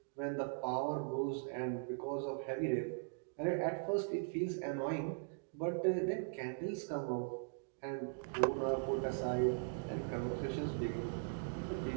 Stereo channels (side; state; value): left; silent; digital silence